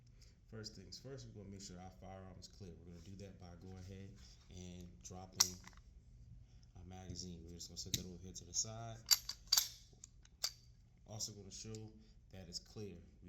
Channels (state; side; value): identical; both; correlation 1.00